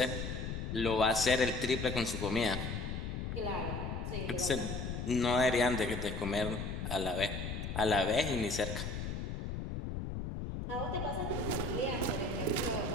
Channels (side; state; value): left; noise; rumble, 4 dB below the sound